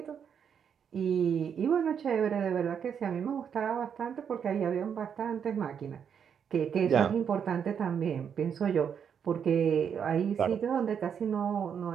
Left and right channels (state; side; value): quieter; left; 7.6 dB